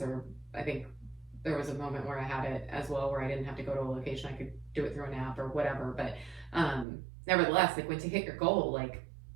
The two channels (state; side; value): drops out; left; at 6.9 s